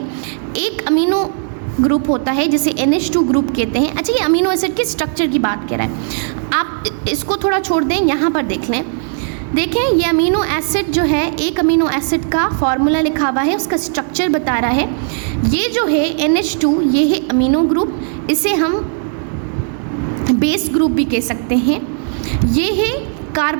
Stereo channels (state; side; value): silent; left; 64 dB below the other